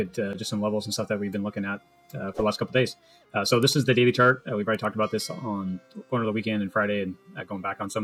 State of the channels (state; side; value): identical; both; correlation 1.00